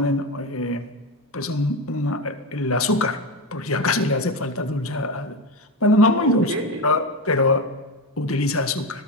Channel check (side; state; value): both; normal; correlation 0.17